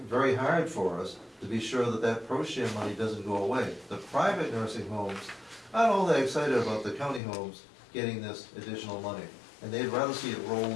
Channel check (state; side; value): drops out; right; at 7.2 s